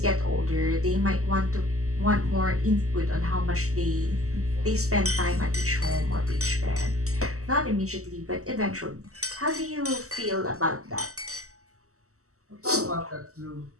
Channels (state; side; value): late; left; 0.65 ms